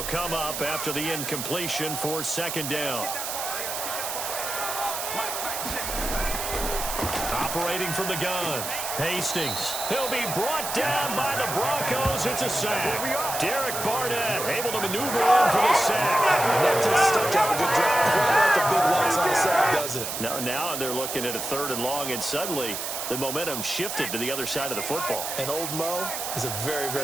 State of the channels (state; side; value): noise; right; hiss, 4 dB below the sound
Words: come up after the incompletion for 2nd down. Operating from the gun. Hastings. He'll be brought down by the Broncos. It's a sack. Derek Barnett able to maneuver in for the sack. does it? No, now they're looking at a 3rd and long, and suddenly the momentum shifted to the other side of the football. And old Mo is a very,